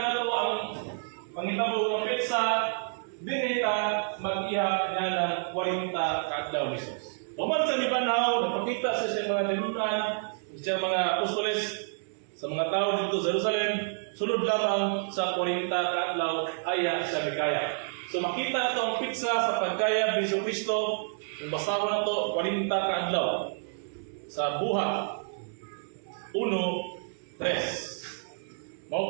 to ang pangitabo ng pizza, dinita mag-ihap niya ng 40 kaadlaw ni Jesus. Tuman sa Mibanhaw, napakita sa mga nilunan, sa mga apostoles, sa mga tao dito sa Jerusalem, sunod lamang sa 40 kaadlaw aya sa Mikaya. So makita na to ang pizza sa pagkaya Biso Kristo, yung basahon na to 40 kaadlaw sa buhat 1:3.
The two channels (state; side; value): silent; left; digital silence